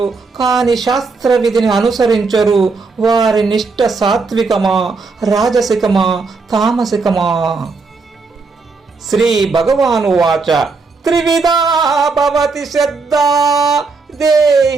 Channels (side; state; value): left; quieter; 4.3 dB